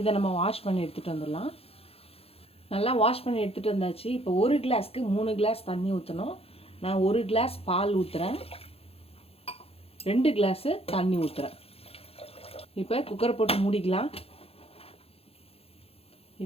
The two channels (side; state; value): right; late; 0.28 ms